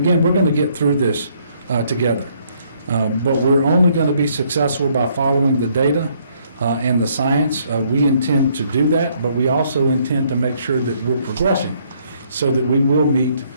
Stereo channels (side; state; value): both; inverted; correlation -0.68